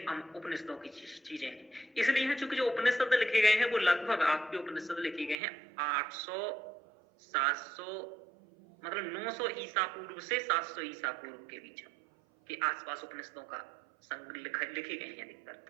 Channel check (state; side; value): drops out; left; at 5.4 s